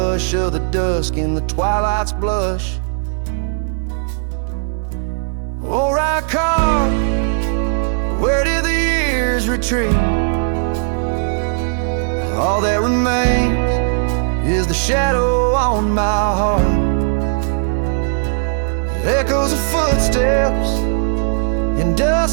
of the dusk in the twilight's blush. Oh, right car, where did the years retreat? All that remains is the shadow on my heart, echoes of footsteps in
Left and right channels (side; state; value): left; silent; digital silence